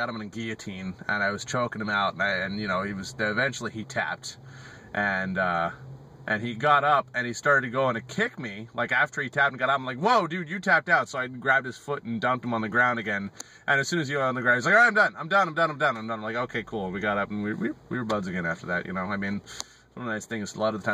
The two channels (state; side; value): identical; both; correlation 1.00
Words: him in a guillotine, and I was choking him out, and you know, eventually he tapped, and he got up and he started going to kick me. Like after he tapped and got up, I'm like, whoa, dude, you tapped out. So I grabbed his foot and dumped him on the ground again. And as soon as he went on the ground, he's like, all right, I'm done. I'm like, okay, cool. We got up and we were buds again after that, you know. I mean, one of the nice things is a lot of the